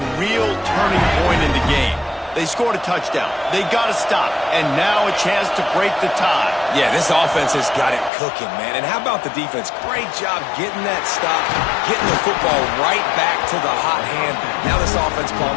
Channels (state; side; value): drops out; right; at 8.1 s